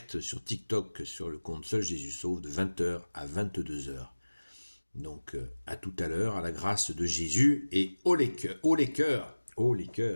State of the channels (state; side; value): inverted; both; correlation -1.00